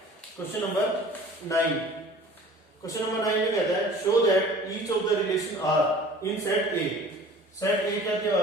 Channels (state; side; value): normal; both; correlation 0.46